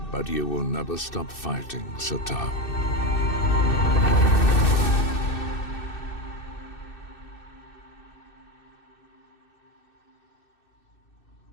But you will never stop fighting, Satao.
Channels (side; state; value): right; late; 2.6 ms